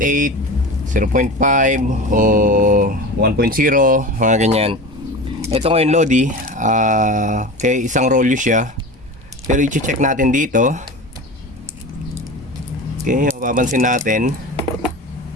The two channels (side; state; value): both; normal; correlation 0.31